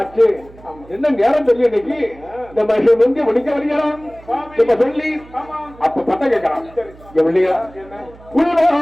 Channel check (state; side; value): noise; right; hum, 22 dB below the sound